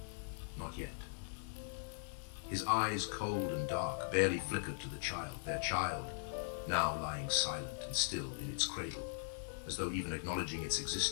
Not yet. His eyes, cold and dark, barely flickered to the child, their child, now lying silent and still in its cradle, as though even acknowledging its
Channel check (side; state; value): right; silent; digital silence